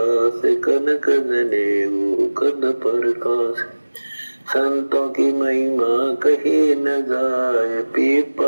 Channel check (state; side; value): inverted; both; correlation -1.00